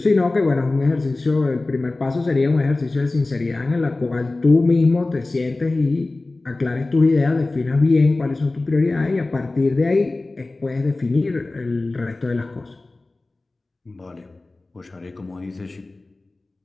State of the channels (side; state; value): right; quieter; 3.1 dB